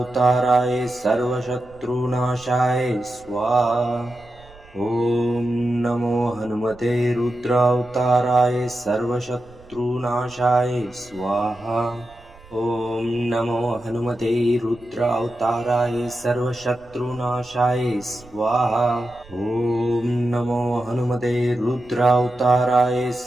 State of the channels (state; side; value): noise; right; rumble, 24 dB below the sound